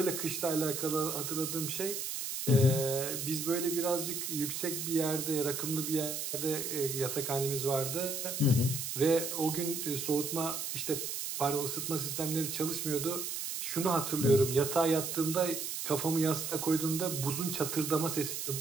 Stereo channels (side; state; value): right; noise; hiss, 4 dB below the sound